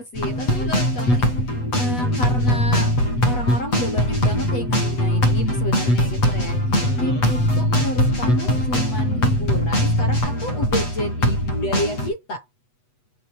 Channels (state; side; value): late; right; 8.1 ms